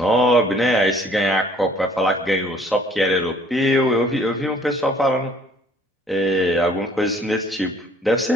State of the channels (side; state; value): both; normal; correlation 0.57